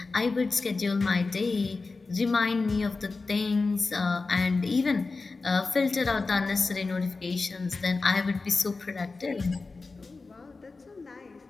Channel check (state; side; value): quieter; right; 3.9 dB